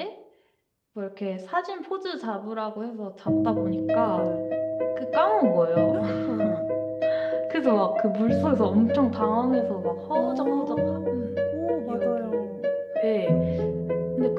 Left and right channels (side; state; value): both; identical; correlation 1.00